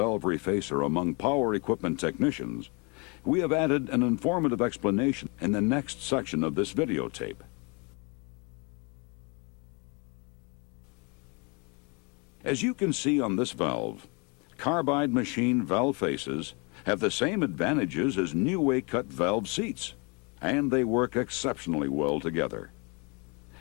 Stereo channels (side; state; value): right; quieter; 31.5 dB